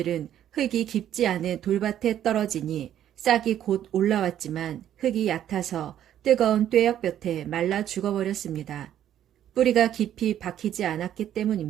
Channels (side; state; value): left; quieter; 11.0 dB